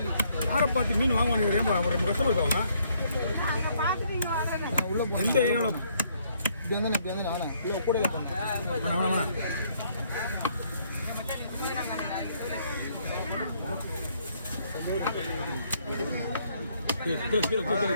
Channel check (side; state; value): both; inverted; correlation -0.68